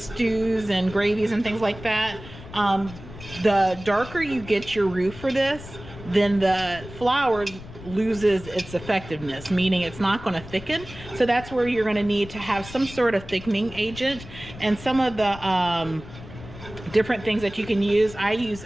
and gravies and things like that, the darker you get your roux for this, then the flour loses its effectiveness, meaning it's not going to thicken. So that's where you're going to need to have some sort of thickening agent. And some of the different things that you can use, I use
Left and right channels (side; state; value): left; noise; rumble, 15 dB below the sound